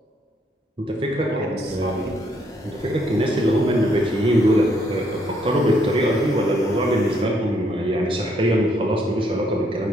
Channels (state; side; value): normal; both; correlation 0.71